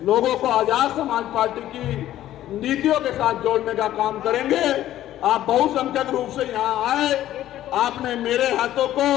लोगों को आजाद समाज पार्टी की नीतियों के साथ जोड़ने का काम करेंगे। आप बहुसंख्यक रूप से यहाँ आए, आपने मेरे हाथों को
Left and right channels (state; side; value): quieter; right; 13.1 dB